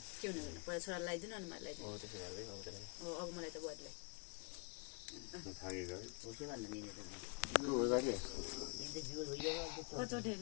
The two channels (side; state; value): right; quieter; 33.0 dB